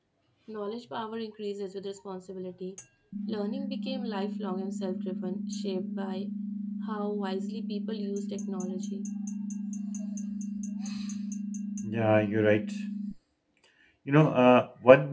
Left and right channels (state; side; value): identical; both; correlation 1.00